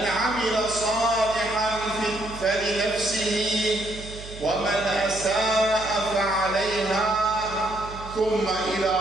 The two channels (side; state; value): right; noise; hum, 14 dB below the sound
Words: salihan feli nefsihi ve men esâ'a fe'aleyha thumma ila